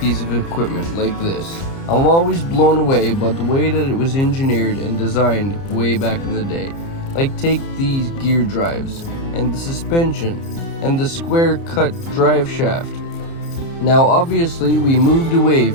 of equipment like this, I'm always blown away by the way that it was engineered and designed way back in the day. Like take these gear drives, and the suspension, and the square cut drive shaft. Now obviously we moved away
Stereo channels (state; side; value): late; right; 30 ms